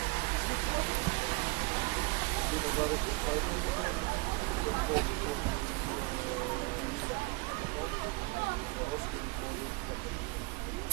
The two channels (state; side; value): quieter; left; 26.7 dB